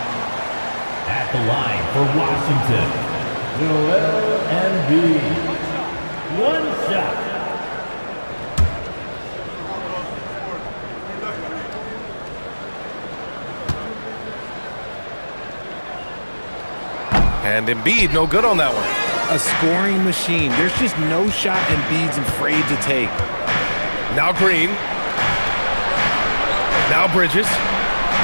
At the line for Washington, Joel Embiid. One shot. And Embiid, no good on that one. A scoring machine. There's just no shot Embiid's afraid to take. Now Green. Now Bridges.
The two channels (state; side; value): inverted; both; correlation -1.00